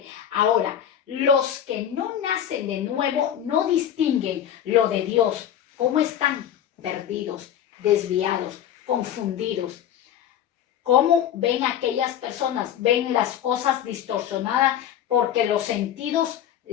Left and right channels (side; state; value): right; quieter; 10.1 dB